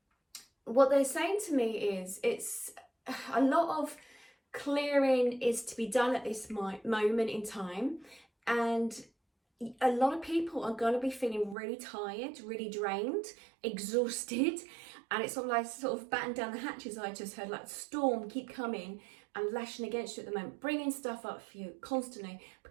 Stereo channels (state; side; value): drops out; left; at 11.6 s